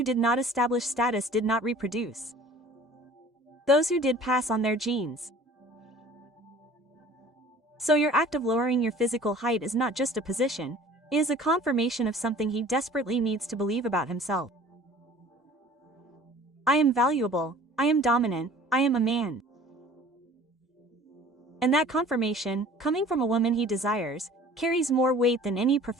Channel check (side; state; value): both; normal; correlation 0.48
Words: did not establish status did not reproduce. Those who did pass on their genes. So your act of lowering your physical height is not just a position, it is a confirmation of something he desperately needs to believe about himself. I am valuable, I am dominant, I am a man. And that confirmation, coming from a woman he desires, carries more weight than any